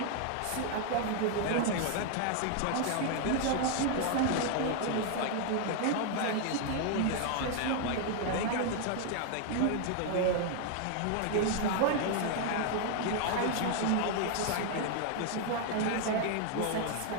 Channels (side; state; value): both; different; correlation 0.00